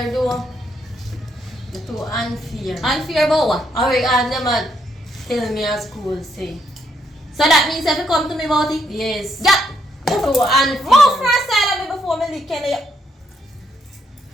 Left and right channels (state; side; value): normal; both; correlation 0.75